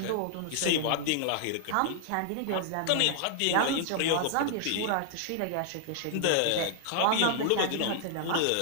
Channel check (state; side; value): different; both; correlation 0.00